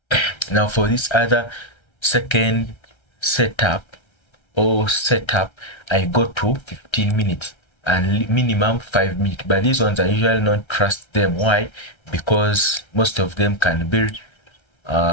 now for this other second setup I go to 15 minutes and minimum 5 minutes. But these ones I usually not trust them. Why? Because most of them can be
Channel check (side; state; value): right; late; 1.3 ms